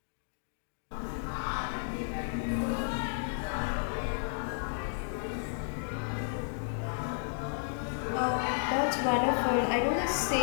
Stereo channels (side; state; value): right; silent; digital silence